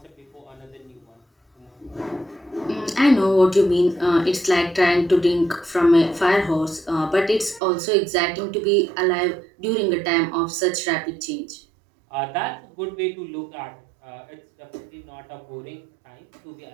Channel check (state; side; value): drops out; left; at 7.6 s